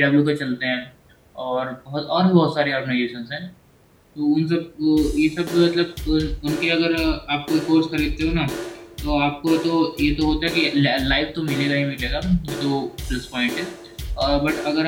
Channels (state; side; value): identical; both; correlation 1.00